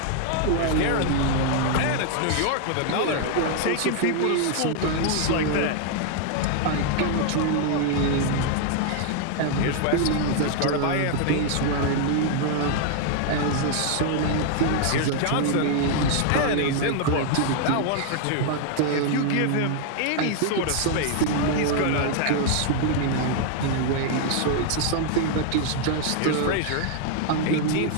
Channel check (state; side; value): different; both; correlation 0.00